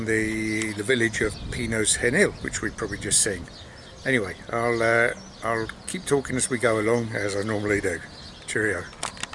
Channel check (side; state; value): both; identical; correlation 1.00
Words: the village of Pinos Genil, which we've probably just seen. Anyway, I'll keep talking as we go along, as I normally do. Cheerio.